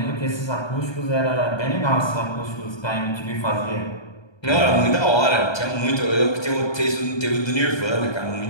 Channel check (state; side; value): late; right; 1.2 ms